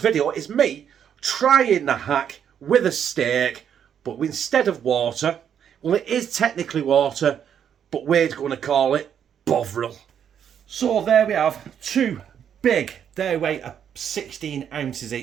is me trying the hack with a steak, but instead of water, well, it is technically water, but we're going to call it Bovril. So there we have two big, they weigh 16 ounces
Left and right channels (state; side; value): quieter; left; 8.6 dB